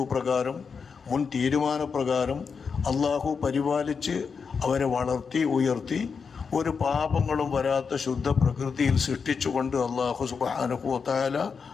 പ്രകാരം, മുൻ തീരുമാനപ്രകാരം അള്ളാഹു പരിപാലിച്ച് അവരെ വളർത്തി ഉയർത്തി ഒരു പാപങ്ങളും വരാത്ത ശുദ്ധ പ്രകൃതിയിൽ സൃഷ്ടിച്ചുകൊണ്ട് അള്ളാഹു സുബ്ഹാനഹു വ തആല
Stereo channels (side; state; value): right; quieter; 5.7 dB